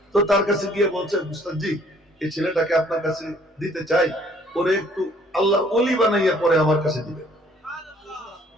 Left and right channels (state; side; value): normal; both; correlation 0.60